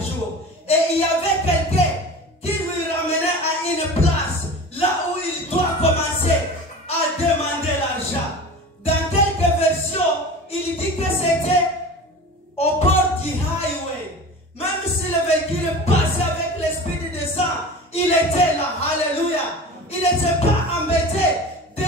jour. Et il y avait quelqu'un qui lui ramenait à une place, là où il doit commencer à demander l'argent. Dans quelques versions, il dit que c'était au bord du highway. Même si le véhicule passait avec l'esprit de sang, il était là. Alléluia. Il n'était pas embêté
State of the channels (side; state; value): both; normal; correlation 0.34